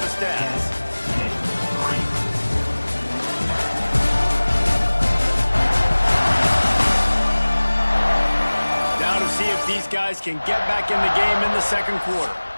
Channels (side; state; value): both; inverted; correlation -1.00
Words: stats. Now to see if these guys can get back in the game in the second quarter.